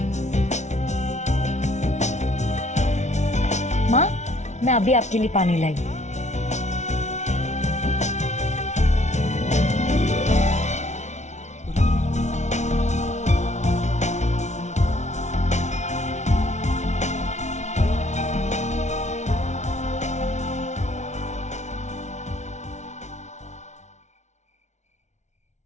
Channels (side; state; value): right; late; 0.33 ms